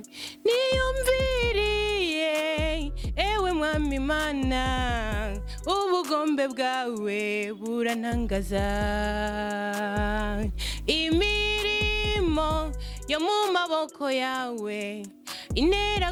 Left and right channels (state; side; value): identical; both; correlation 1.00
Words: niyumviriye ewe mwami Imana ubugombe bwawe burantangaza imirimo yo mu maboko yawe